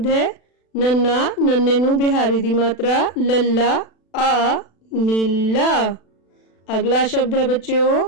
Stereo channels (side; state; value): right; late; 36 ms